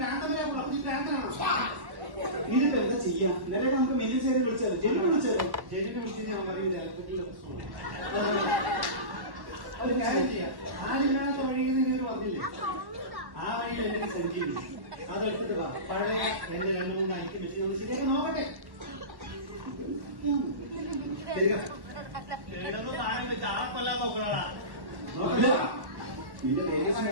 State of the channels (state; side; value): late; left; 1.1 ms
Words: ഈ പ്രാന്തനാണോ? ഇതിപ്പോ എന്താ ചെയ്യാം? ഇന്നലെ നമുക്ക് മെയിൻ്റനൻസ് വിളിച്ചത് ജെനിക്ക് വിളിച്ചത്. ജെനിക്ക് വിളിച്ച് ഞാൻ പറയുന്നത് ഇലക്ട്രിക്കൽ പ്രശ്നമാണ്. ഒരു കാര്യം ചെയ്യാം. ആരില്ലാത്ത വഴിയിൽ നിങ്ങൾ പറഞ്ഞില്ലേ? ആ വഴിയിൽ എന്തെങ്കിലും സഞ്ചരിക്കും. അതെടുത്തിട്ട് വാ. പഴയ എന്റെ 2-3 ഐറ്റം വെച്ച് നമ്മൾ ശരിയാക്കി നോക്കട്ടെ. കേടൊന്നും താഴെ വെച്ച് ആളെ കൊല്ലാൻ നോക്കണടാ. നോക്കില്ല നിന്റെ വേഗം